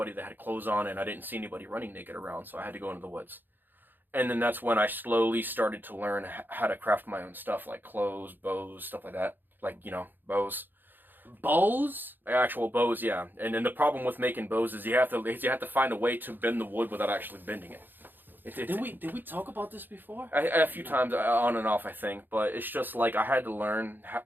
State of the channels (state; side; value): late; left; 0.092 ms